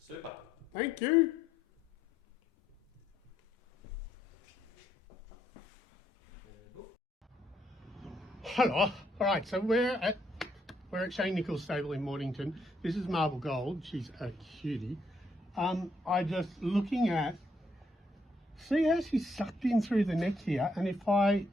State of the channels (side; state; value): both; normal; correlation 0.73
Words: Thank you. Hello. All right, so we're at Shane Nichols' stable in Mornington. This is Marble Gold. She's a cutie. I just looking at, see how she's sucked in through the neck here, and if I,